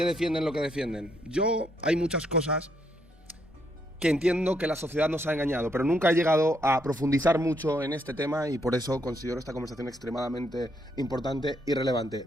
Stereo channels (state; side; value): normal; both; correlation 0.74